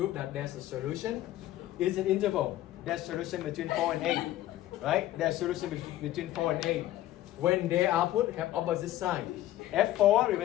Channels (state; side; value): quieter; right; 14.2 dB